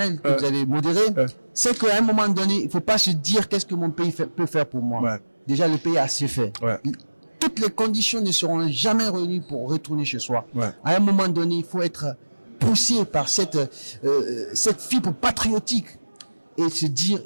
que vous avez modéré, c'est qu'à un moment donné, il faut pas se dire qu'est-ce que mon pays peut faire pour moi. Ouais. Déjà, le pays a assez fait. Ouais. Toutes les conditions ne seront jamais réunies pour retourner chez soi. Ouais. À un moment donné, il faut être poussé par cette fibre patriotique et se dire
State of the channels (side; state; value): both; inverted; correlation -1.00